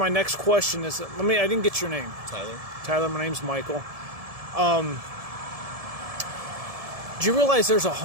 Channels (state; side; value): late; left; 1.7 ms